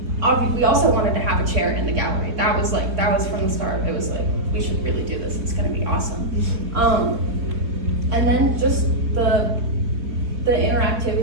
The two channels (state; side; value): late; left; 3.7 ms